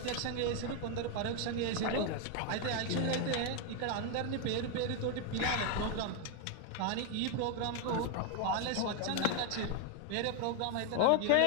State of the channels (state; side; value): different; both; correlation 0.01